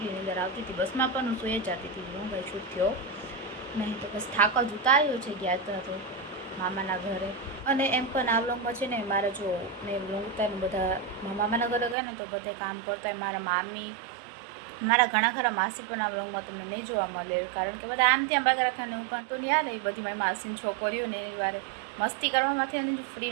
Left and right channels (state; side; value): drops out; left; at 12.0 s